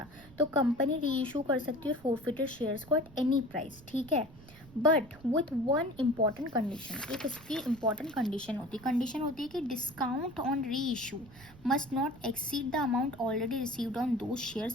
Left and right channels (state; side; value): noise; right; rumble, 21 dB below the sound